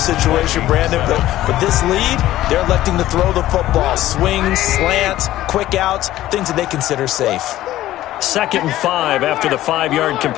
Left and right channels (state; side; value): quieter; right; 14.6 dB